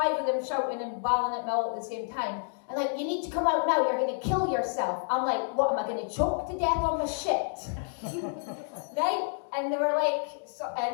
of them shouting and bawling at me all at the same time. And like, you need to come out now, you're going to kill yourself. I'm like, what, am I going to choke to death on my shit? Right? And they were like, so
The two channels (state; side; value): silent; right; digital silence